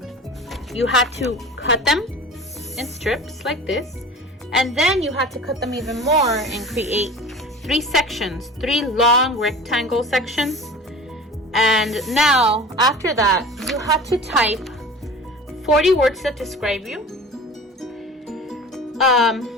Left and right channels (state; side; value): normal; both; correlation 0.39